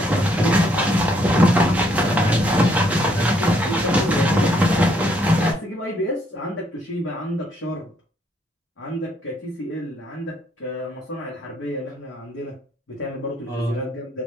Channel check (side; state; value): both; normal; correlation 0.70